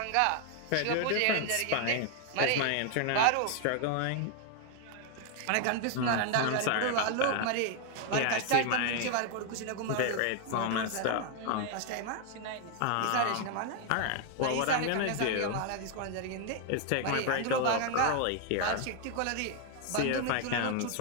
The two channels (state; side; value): different; both; correlation 0.00